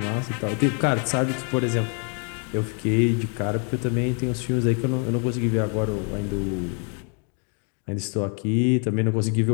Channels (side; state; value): right; quieter; 39.8 dB